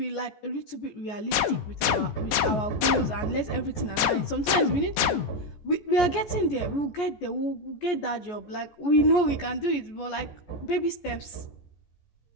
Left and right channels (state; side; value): late; right; 15 ms